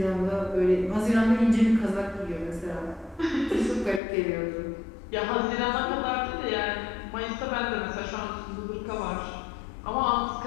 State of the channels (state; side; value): drops out; right; at 4.0 s